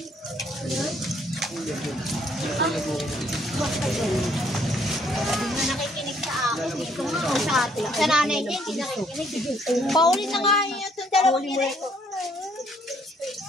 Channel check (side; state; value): both; normal; correlation 0.66